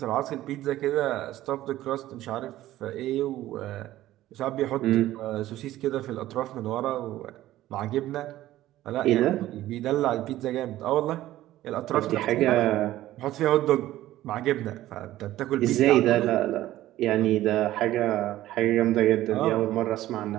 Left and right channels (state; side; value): quieter; left; 14.7 dB